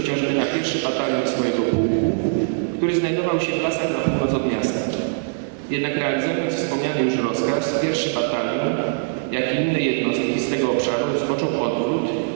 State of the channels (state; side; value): silent; left; digital silence